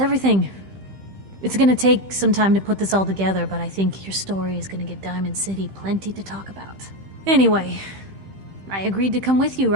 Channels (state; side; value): late; left; 15 ms